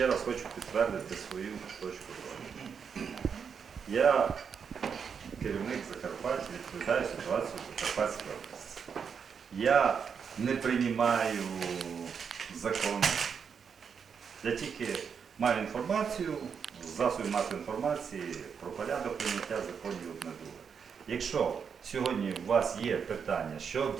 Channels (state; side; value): quieter; left; 6.6 dB